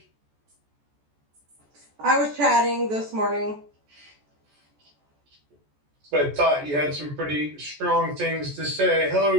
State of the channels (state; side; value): late; left; 14 ms